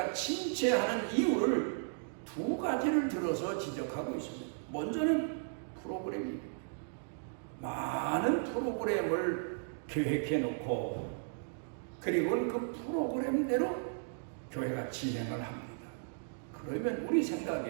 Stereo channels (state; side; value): silent; left; digital silence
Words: 침체하는 이유를 두 가지를 들어서 지적하고 있습니다. 먼저는 프로그램입니다. 많은 프로그램을 계획해 놓고 그리고 그 프로그램대로 교회가 진행을 합니다. 그러면 우리